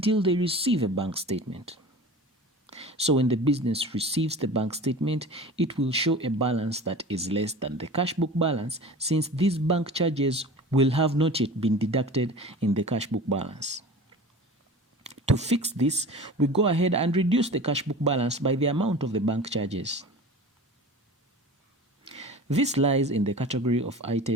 they receive a bank statement. So when the business receives the bank statement, it will show a balance that is less than the cash book balance, since these bank charges will have not yet been deducted in the cash book balance. To fix this, we go ahead and reduce the cash book balance by the amount of the bank charges. This lies in the category of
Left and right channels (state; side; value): normal; both; correlation 0.37